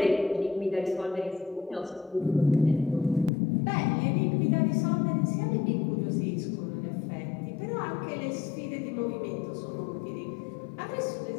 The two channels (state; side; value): drops out; right; at 3.3 s